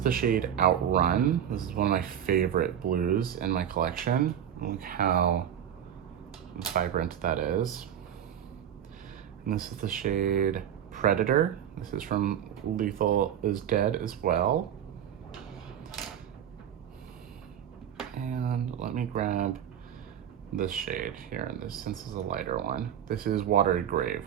shade Outrun. This is one of my favorite blues in my collection. Look how vibrant that is. And this is the shade Predator. This is from Lethal is Dead as well. And let me grab this shade here, and this, since it's a lighter one. This is Watery Grave,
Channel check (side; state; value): left; quieter; 9.6 dB